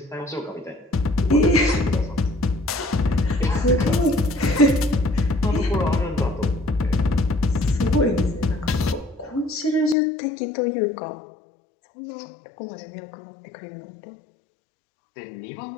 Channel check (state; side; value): drops out; right; at 10.0 s